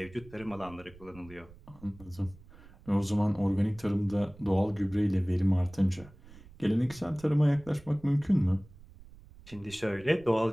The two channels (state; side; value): noise; right; rumble, 21 dB below the sound